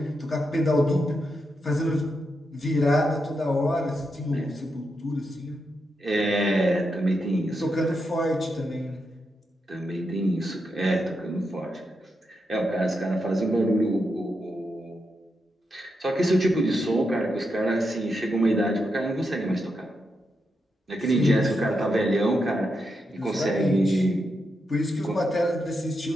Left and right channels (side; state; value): both; normal; correlation 0.84